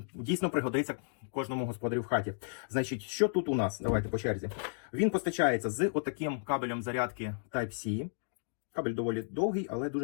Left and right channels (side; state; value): right; silent; digital silence